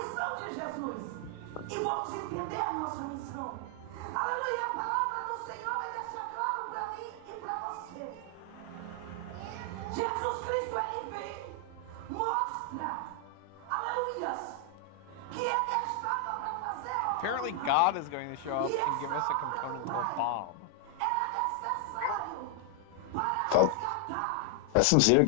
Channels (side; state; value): both; different; correlation 0.00